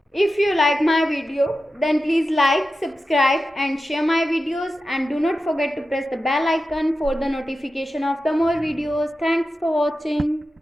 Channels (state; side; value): normal; both; correlation 0.92